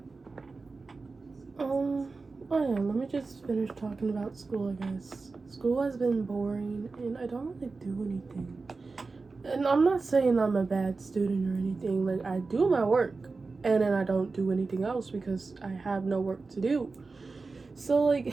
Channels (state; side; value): quieter; left; 4.0 dB